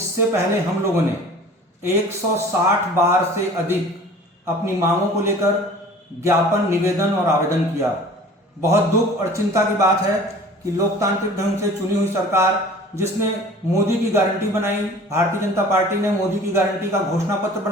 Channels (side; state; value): both; normal; correlation 0.45